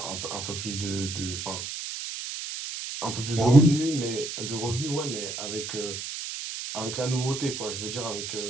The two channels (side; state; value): right; noise; hiss, 6 dB below the sound